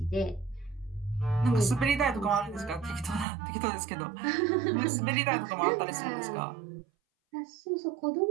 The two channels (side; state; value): left; drops out; at 3.2 s